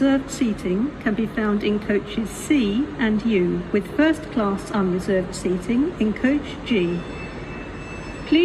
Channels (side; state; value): both; identical; correlation 1.00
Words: seating can be found in coaches C and U, with first class unreserved seating in coach G.